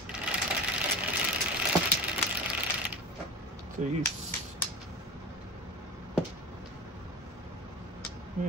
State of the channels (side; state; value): both; normal; correlation 0.29